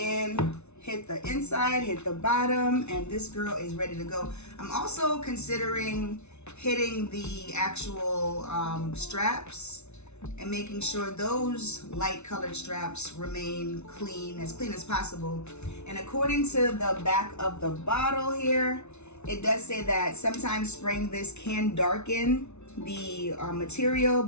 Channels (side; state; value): right; late; 0.81 ms